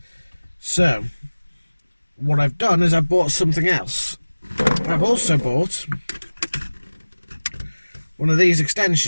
So what I've done is I've bought something else. I've also bought one of these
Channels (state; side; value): inverted; both; correlation -1.00